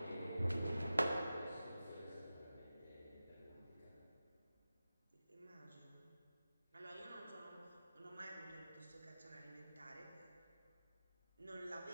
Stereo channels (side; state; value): both; inverted; correlation -0.94